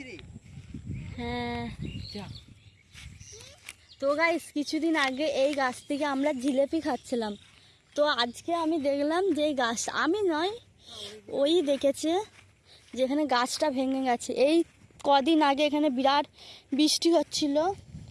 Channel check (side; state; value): both; identical; correlation 1.00